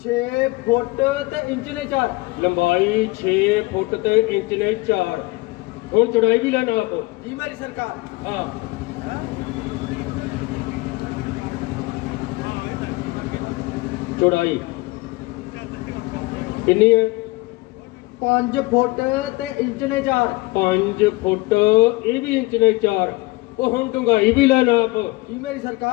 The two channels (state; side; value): quieter; right; 22.3 dB